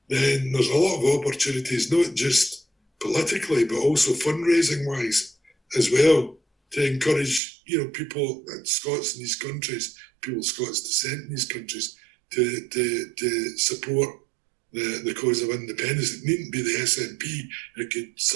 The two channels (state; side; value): drops out; left; at 7.4 s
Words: then there's a lot of opportunities, not just politically, but also fundraising-wise as well, to encourage, people, Scots in these countries, people of Scots descent in these countries, to support the cause of independence. It needn't be the SNP, it could